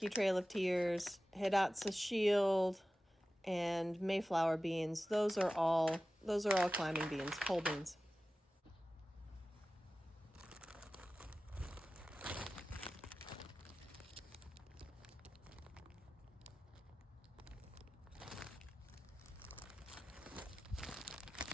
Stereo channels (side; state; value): both; normal; correlation 0.95